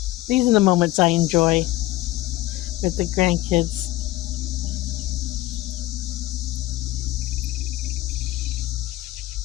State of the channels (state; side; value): quieter; right; 17.2 dB